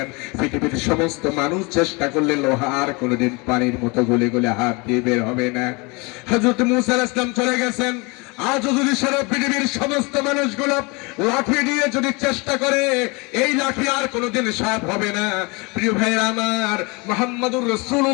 পৃথিবীর সমস্ত মানুষ চেষ্টা করলে লোহা আর কোনোদিন পানির মতো গলে গলে হাত দিয়ে বের হবে না। হযরত মূসা আলাইহিস সালাম চলে গেছেন। আজও যদি সারা পৃথিবীর সমস্ত মানুষগুলো লাঠি দিয়ে যদি চেষ্টা করে এই লাঠি আর কোনোদিন সাপ হবে না। প্রিয় ভাইরা আমার, মুহাম্মদুর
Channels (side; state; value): right; quieter; 28.0 dB